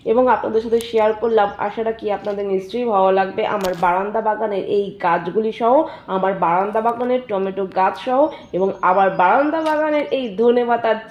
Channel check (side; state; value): both; identical; correlation 1.00